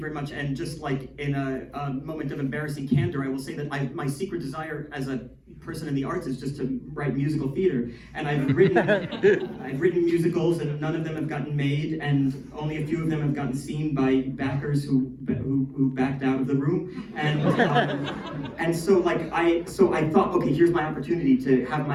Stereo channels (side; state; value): both; identical; correlation 1.00